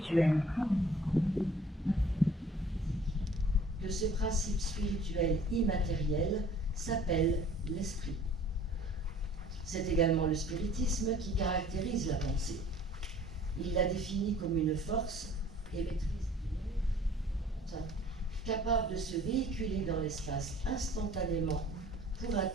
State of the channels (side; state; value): both; normal; correlation 0.52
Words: que ce principe spirituel immatériel s'appelle l'esprit. C'est également le spiritisme qui caractérise la pensée. Il la définit comme une force émettrice capable de se véhiculer dans l'espace instantanément pour